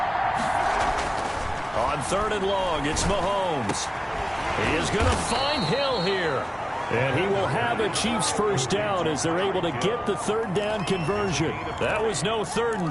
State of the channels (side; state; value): both; identical; correlation 1.00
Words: On 3rd and long, it's Mahomes. He is going to find Hill here. And he will have a Chiefs first down as they're able to get the 3rd down conversion. That was no 3rd